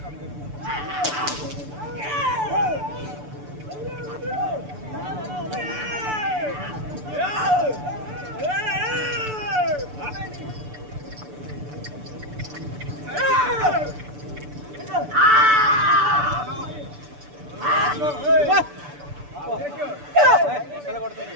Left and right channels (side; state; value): left; late; 6.9 ms